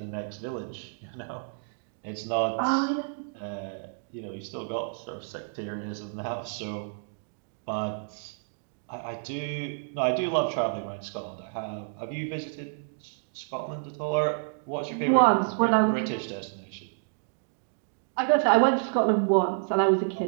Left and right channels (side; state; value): left; silent; 58 dB below the other